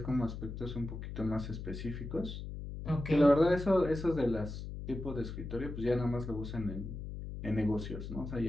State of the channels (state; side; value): noise; left; hum, 8 dB below the sound